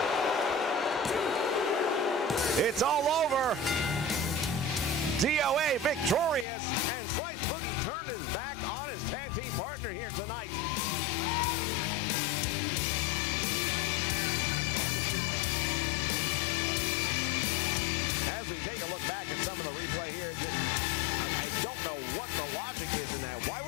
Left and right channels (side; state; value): right; drops out; at 6.5 s